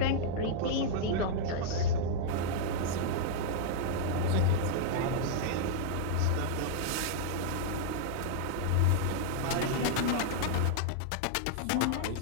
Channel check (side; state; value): both; different; correlation -0.01